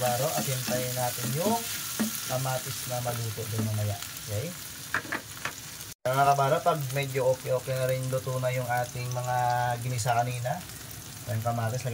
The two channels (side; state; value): both; identical; correlation 1.00